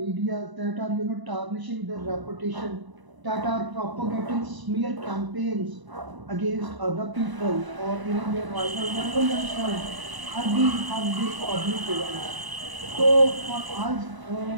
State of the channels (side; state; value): left; late; 1.0 ms